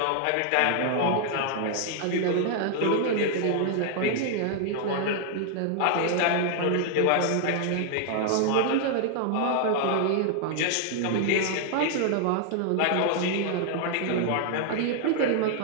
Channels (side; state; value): both; different; correlation 0.00